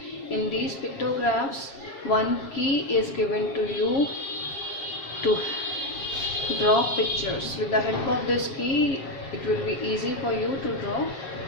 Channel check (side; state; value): right; late; 7.3 ms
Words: In these pictographs, one key is given to you to draw pictures. With the help of this key, it will be easy for you to draw